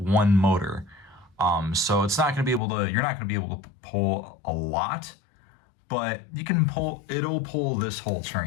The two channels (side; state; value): right; drops out; at 2.6 s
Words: motor. So it's not going to be able to, you're not going to be able to pull a lot, but you can pull, it'll pull this whole